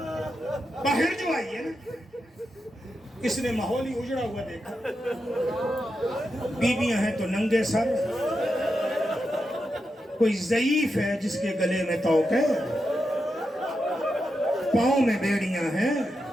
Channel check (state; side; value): normal; both; correlation 0.87